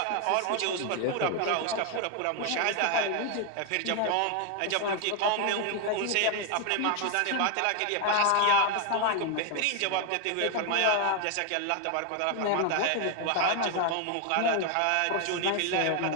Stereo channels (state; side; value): different; both; correlation 0.01